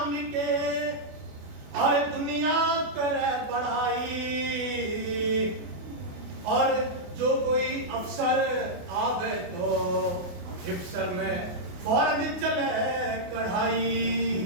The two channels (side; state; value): left; late; 28 ms